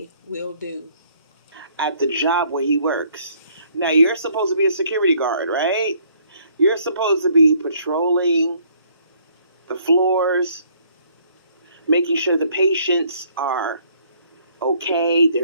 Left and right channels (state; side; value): inverted; both; correlation -0.63